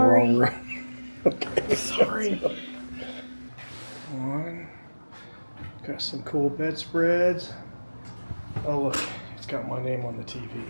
room. Okay. Sorry. One. Got some cool bedspreads. Oh look, it's got my name on the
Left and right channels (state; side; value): inverted; both; correlation -1.00